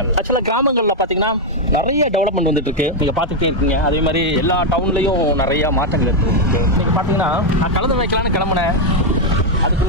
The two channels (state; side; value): normal; both; correlation 0.01